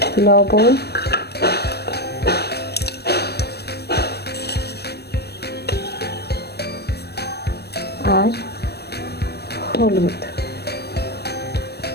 লবণ, আর হলুদ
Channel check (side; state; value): right; late; 0.47 ms